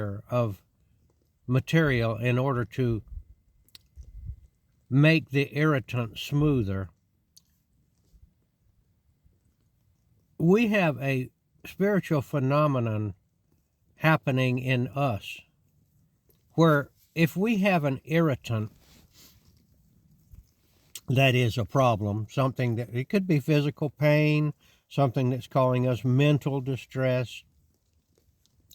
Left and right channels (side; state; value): both; identical; correlation 1.00